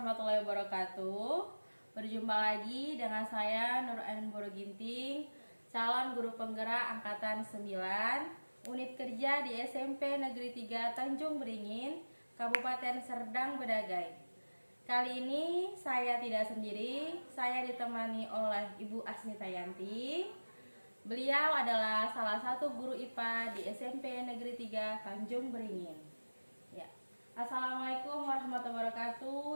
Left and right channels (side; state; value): both; inverted; correlation -1.00